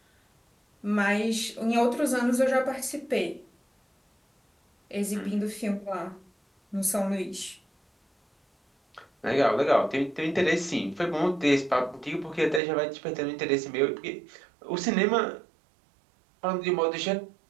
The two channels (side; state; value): left; drops out; at 12.6 s